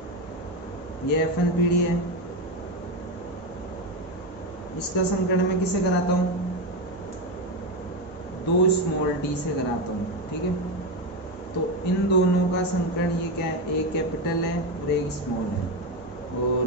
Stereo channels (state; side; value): normal; both; correlation 0.13